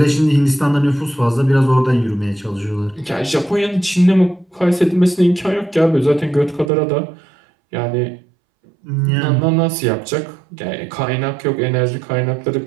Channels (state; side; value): drops out; left; at 6.7 s